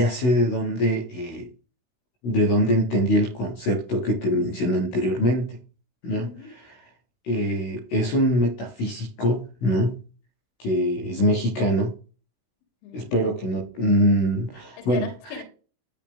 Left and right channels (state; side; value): late; right; 16 ms